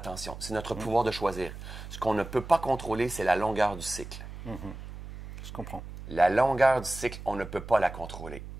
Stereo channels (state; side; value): noise; right; hum, 12 dB below the sound